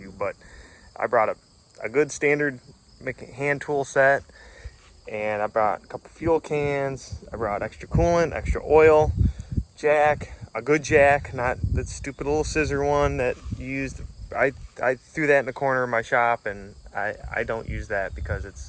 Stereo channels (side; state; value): both; identical; correlation 1.00